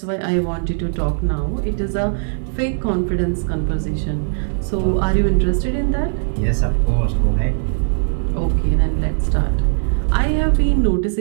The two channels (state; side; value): silent; left; digital silence